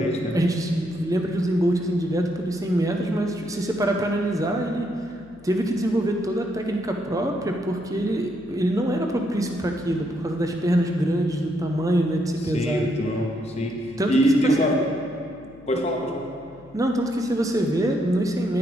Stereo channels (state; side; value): noise; left; hum, 26 dB below the sound